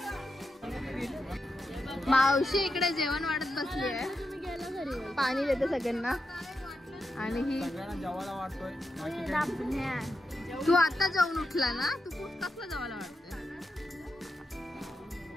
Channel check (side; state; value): both; normal; correlation 0.86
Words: मावशी इकडे जेवण वाढत बसली आहे. पाणी देते सगळ्यांना. आणि ही सगळ्यांना जेवायला वाटतोय. तू आता जेवून उठला ना, तू कसला जेवायला वाटतोय?